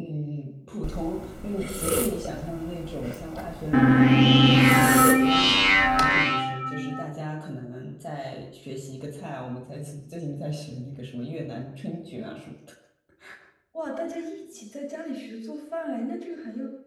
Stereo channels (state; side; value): identical; both; correlation 1.00